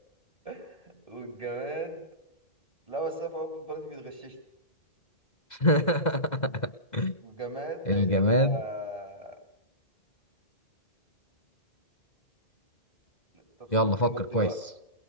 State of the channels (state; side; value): late; right; 2.0 ms